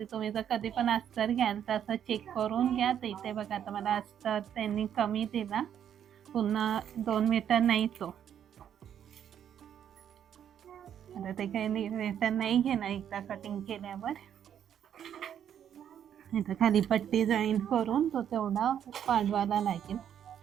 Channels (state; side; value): quieter; left; 9.3 dB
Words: तुम्ही जर कधी पण अस्तर घ्याल तर असं चेक करून घ्या. तर इथे बघा आता मला अस्तर त्यांनी कमी दिला, पुन्हा 2 मीटर नाही तो. आता ते काही रिटर्न नाही घेणार एकदा कटिंग केल्यावर. इथं खाली पट्टी जॉईंट करून तो तेवढा पाडवायला लागेल.